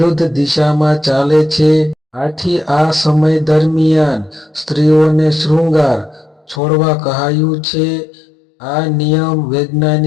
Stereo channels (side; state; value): right; drops out; at 6.6 s